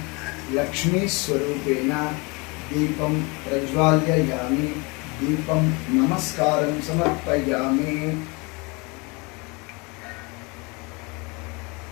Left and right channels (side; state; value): right; quieter; 28.4 dB